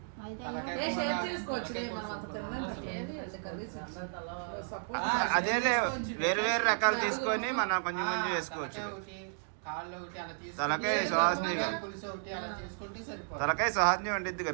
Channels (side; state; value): left; silent; digital silence